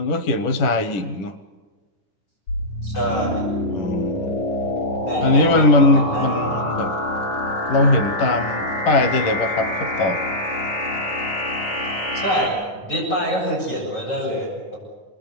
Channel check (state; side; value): late; right; 10 ms